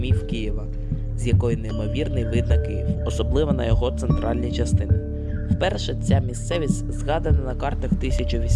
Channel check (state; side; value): identical; both; correlation 1.00